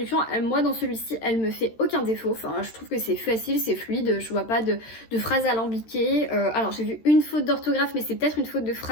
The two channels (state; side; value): late; right; 13 ms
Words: moi dans celui-ci, elle me fait aucun défaut. Enfin, je trouve que c'est facile, c'est fluide, je vois pas de phrases alambiquées. Alors j'ai vu une faute d'orthographe, mais c'est peut-être une faute de